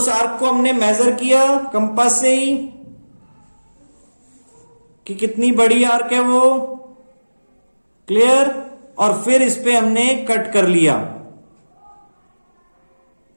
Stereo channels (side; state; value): both; inverted; correlation -1.00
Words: आर्क को हमने मेजर किया कंपास से ही कि कितनी बड़ी आर्क है वो। क्लियर? और फिर इस पे हमने कट कर लिया।